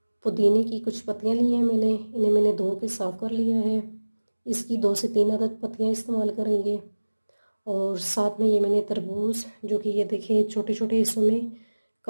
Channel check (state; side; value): inverted; both; correlation -1.00